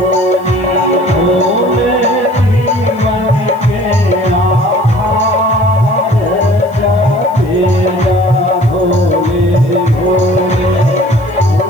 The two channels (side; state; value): left; noise; hiss, 28 dB below the sound